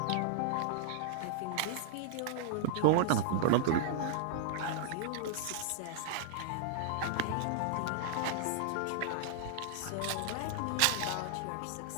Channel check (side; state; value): both; different; correlation -0.01